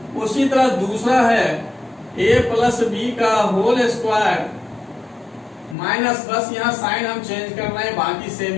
उसी तरह दूसरा है a प्लस बी का होल स्क्वायर माइनस, बस यहाँ साइन हम चेंज कर रहे हैं, बाकी सेम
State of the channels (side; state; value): right; drops out; at 5.8 s